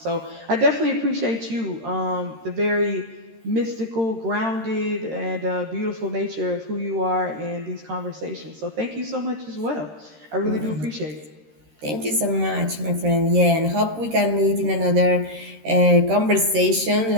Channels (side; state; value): left; late; 13 ms